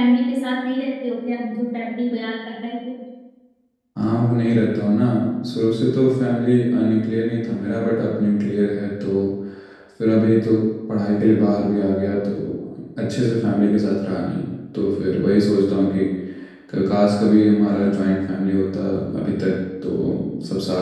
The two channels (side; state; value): both; identical; correlation 1.00